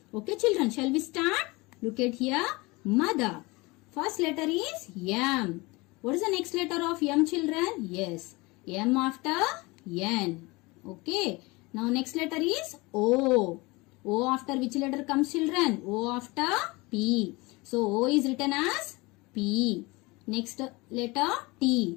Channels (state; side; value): quieter; right; 24.1 dB